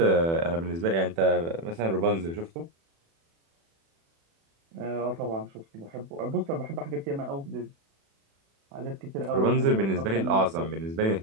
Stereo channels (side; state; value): left; late; 36 ms